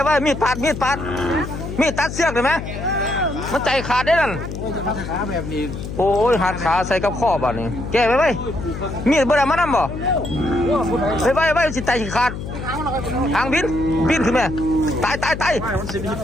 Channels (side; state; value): left; noise; hum, 8 dB below the sound